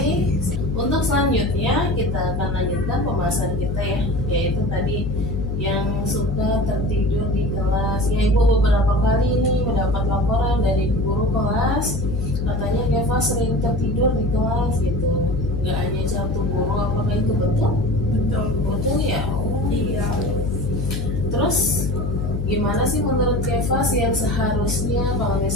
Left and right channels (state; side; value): noise; left; hum, 2 dB below the sound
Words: Untuk selanjutnya kita akan lanjutkan pembahasan kita ya, yaitu tadi yang suka tertidur di kelas. Ya, Ibu beberapa kali ini mendapat laporan dari guru kelas, katanya Keva sering tertidur di kelas gitu. Nggak hanya satu guru, apakah itu betul? Betul. Betul ya? Oh, Iya. Terus gimana sih menurut Kevas yang seharusnya kalau